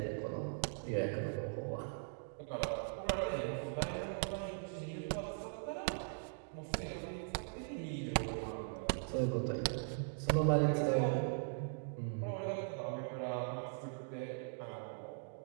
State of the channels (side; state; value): left; silent; digital silence